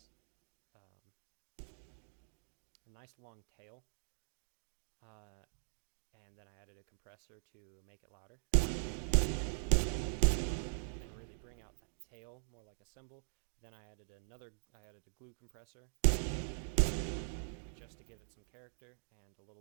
long tail, and then I added a compressor to make it louder and really bring out that tail more like a cymbal. Then I added a glue compressor just to give it some character and a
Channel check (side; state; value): left; silent; digital silence